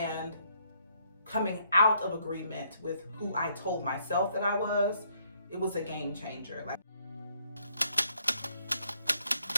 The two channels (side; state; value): both; inverted; correlation -0.69